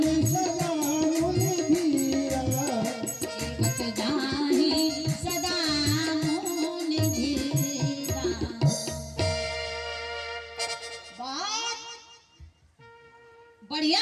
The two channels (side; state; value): both; identical; correlation 1.00